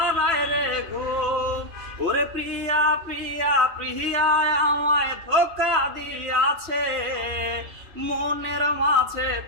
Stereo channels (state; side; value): late; left; 3.0 ms